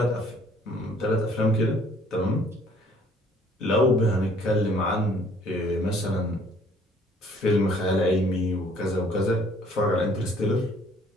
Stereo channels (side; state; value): both; normal; correlation 0.59